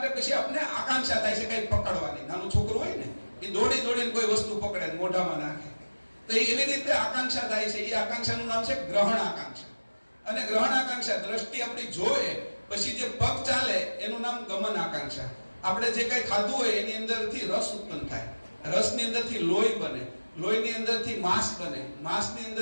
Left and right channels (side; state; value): both; inverted; correlation -1.00